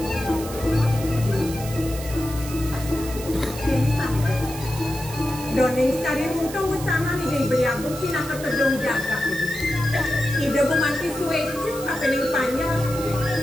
Doning sekali untung utama nih dari beliau pindah ke pedong jaga. Ide bumanti suweci kapeling panjang.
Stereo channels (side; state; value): right; noise; hiss, 12 dB below the sound